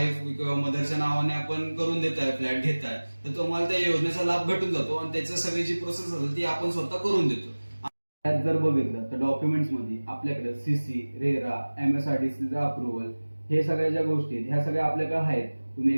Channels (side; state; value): both; inverted; correlation -1.00